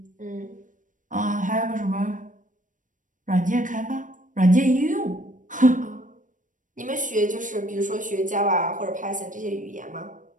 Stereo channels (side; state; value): left; late; 0.38 ms